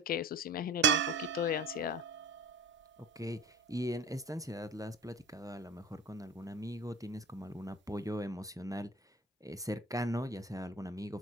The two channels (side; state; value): both; normal; correlation 0.37